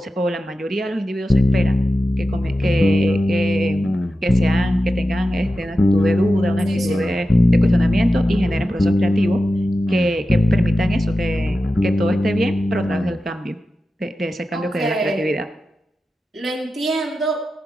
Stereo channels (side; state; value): both; normal; correlation 0.92